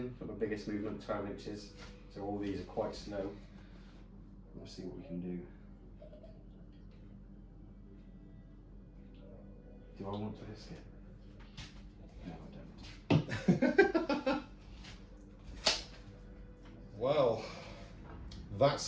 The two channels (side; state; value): both; identical; correlation 1.00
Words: Got my biggest movement, 12 inches. So all these are quite slow. Let's see what we can do. Do I want to risk it? No, I don't. Well,